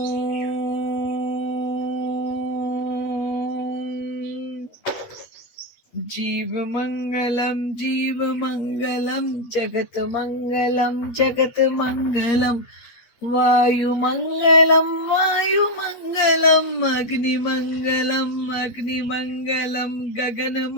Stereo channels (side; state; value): right; late; 8.5 ms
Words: જીવ મંગલમ, જીવ મંગલમ, જગત મંગલમ, જગત મંગલમ. વાયુ મંગલમ, વાયુ મંગલમ, અગ્નિ મંગલમ, અગ્નિ મંગલમ, ગગન